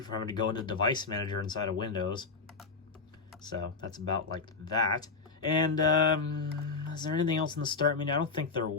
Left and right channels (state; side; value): quieter; right; 4.4 dB